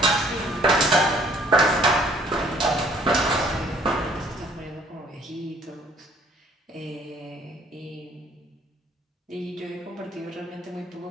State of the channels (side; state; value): both; normal; correlation 0.59